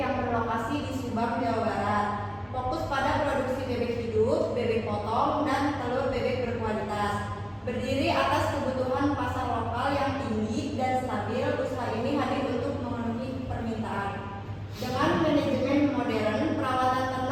berlokasi di Subang, Jawa Barat. Fokus pada produksi bebek hidup, bebek potong, dan telur bebek berkualitas. Berdiri atas kebutuhan pasar lokal yang tinggi dan stabil, usaha ini hadir untuk memenuhi permintaan. Dengan manajemen modern, perawatan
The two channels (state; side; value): identical; both; correlation 1.00